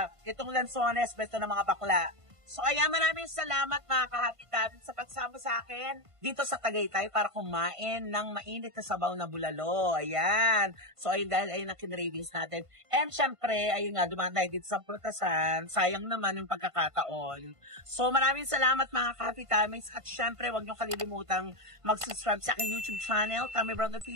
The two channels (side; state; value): left; late; 1.5 ms